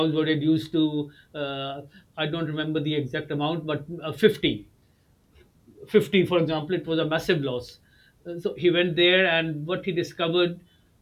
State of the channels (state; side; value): identical; both; correlation 1.00